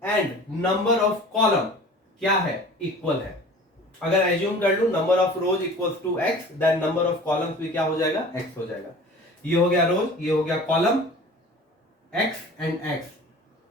and number of column क्या है? इक्वल है। अगर एज्यूम कर लूं number of rows equals to X, then number of columns भी क्या हो जाएगा? एक्स हो जाएगा। ये हो गया रोज, ये हो गया कॉलम, एक्स एंड एक्स।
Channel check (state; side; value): normal; both; correlation 0.43